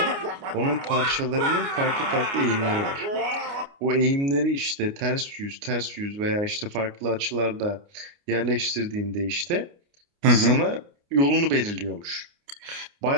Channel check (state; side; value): late; left; 29 ms